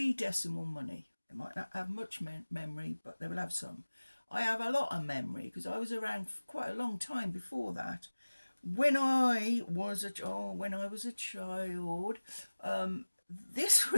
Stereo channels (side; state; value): both; inverted; correlation -1.00